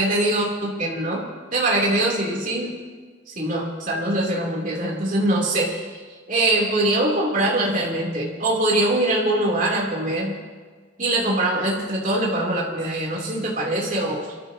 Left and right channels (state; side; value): normal; both; correlation 0.25